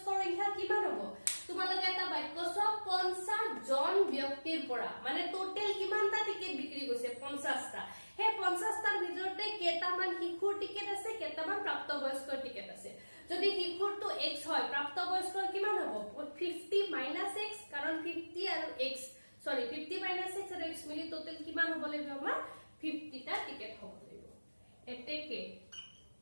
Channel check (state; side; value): inverted; both; correlation -1.00